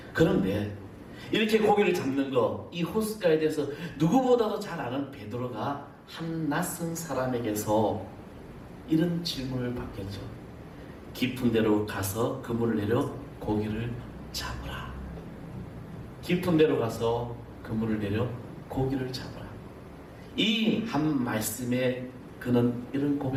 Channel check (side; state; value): both; identical; correlation 1.00